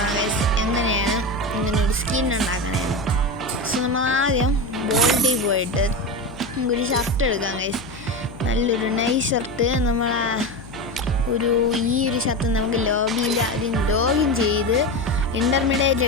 ഗൈസ് എങ്ങനെയാണ് ഇങ്ങനൊരു സ്കിൻ ഉണ്ടാക്കണേന്ന്. സോ നമ്മൾ ആദ്യം ബോൾഡിൽ പോയിട്ട് നമുക്കൊരു ഷർട്ട് എടുക്കാം ഗൈസ്. നല്ലൊരു നൈസ് ഷർട്ട്. ഈ ഒരു ഷർട്ട് നമുക്ക് ലോബിയിൽ ആദ്യം ലോഗിൻ ചെയ്ത് ഇൻ്റർമീഡിയറ്റ്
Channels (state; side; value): noise; left; hum, 19 dB below the sound